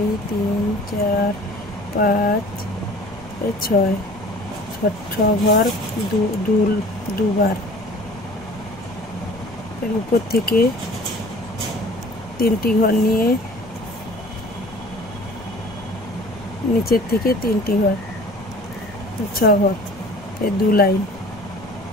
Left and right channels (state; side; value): noise; left; rumble, 20 dB below the sound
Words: 3 4 5 6 ঘর দুবার। এর উপর থেকে 3টি ঘর নিয়ে নিচের থেকে 3টি ঘর, 6 ঘর, এই 2 লাইন